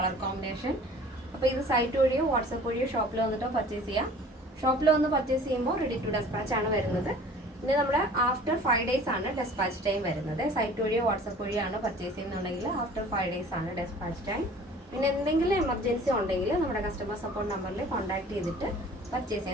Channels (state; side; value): normal; both; correlation 0.47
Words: കോമ്പിനേഷൻ. അപ്പോൾ ഇത് സൈറ്റ് വഴിയോ വാട്സപ്പ് വഴിയോ ഷോപ്പിൽ വന്നിട്ടോ പർച്ചേസ് ചെയ്യാം. ഷോപ്പിൽ വന്ന് പർച്ചേസ് ചെയ്യുമ്പോൾ റെഡി ടു ഡെസ്പാച്ച് ആണ് വരുന്നത്. പിന്നെ നമ്മുടെ ആഫ്റ്റർ 5 days ആണ് ഡെസ്പാച്ച് ടൈം വരുന്നത്. സൈറ്റ് വഴിയോ വാട്സപ്പ് വഴിയാണ് പർച്ചേസ് ചെയ്യുന്നുണ്ടെങ്കിൽ ആഫ്റ്റർ 5 days ആണ് ഡെസ്പാച്ച് ടൈം. പിന്നെ എന്തെങ്കിലും എമർജൻസി ഉണ്ടെങ്കിൽ നമ്മുടെ കസ്റ്റമർ സപ്പോർട്ട് നമ്പറിൽ കോൺടാക്ട് ചെയ്തിട്ട് പർച്ചേസ്